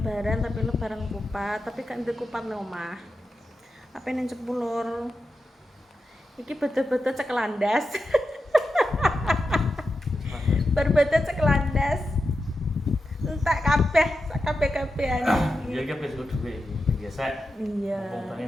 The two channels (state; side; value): normal; both; correlation 0.89